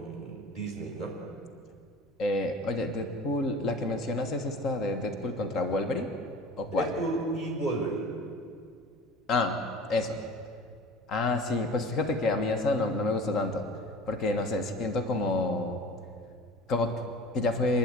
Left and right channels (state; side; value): normal; both; correlation 0.40